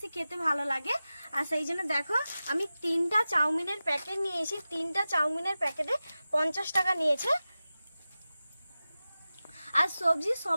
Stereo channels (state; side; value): inverted; both; correlation -0.95